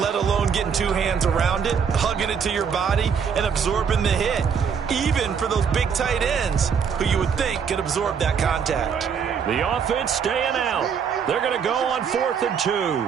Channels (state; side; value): quieter; left; 6.8 dB